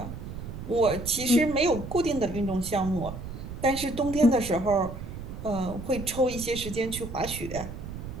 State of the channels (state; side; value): noise; right; rumble, 9 dB below the sound